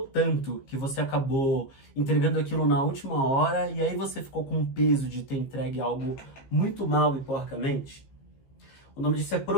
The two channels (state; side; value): late; right; 15 ms